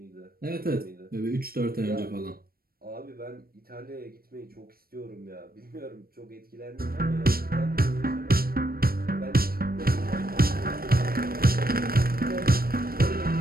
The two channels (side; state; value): left; late; 0.44 ms